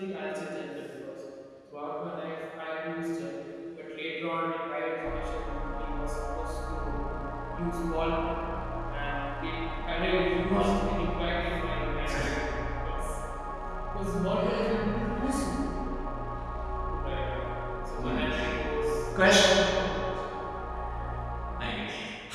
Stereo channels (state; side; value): identical; both; correlation 1.00